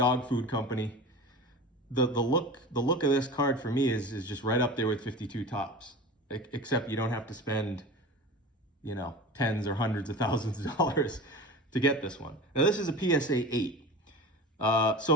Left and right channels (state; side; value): normal; both; correlation 0.33